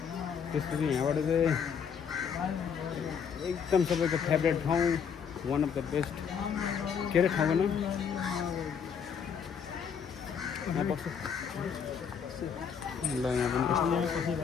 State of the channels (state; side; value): quieter; right; 7.1 dB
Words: त्यसपछि यहाँबाट चाहिँ एकदम सबैको फेभरेट ठाउँ वान अफ द बेस्ट के अरे ठाउँको नाम यहाँ पर्छ ल यहाँ पनि